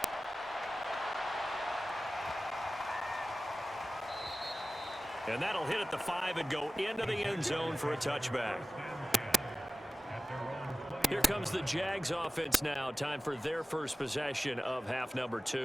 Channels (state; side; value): normal; both; correlation 0.95